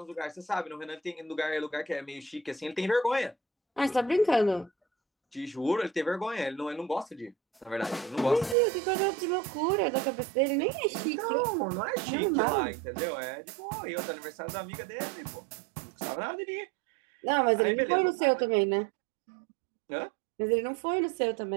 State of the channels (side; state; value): left; drops out; at 8.6 s